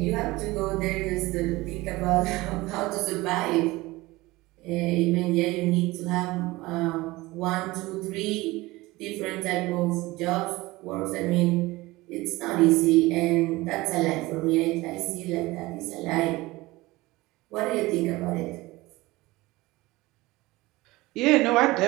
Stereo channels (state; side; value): quieter; left; 20.3 dB